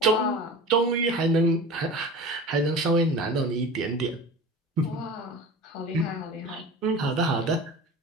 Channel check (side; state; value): both; normal; correlation 0.35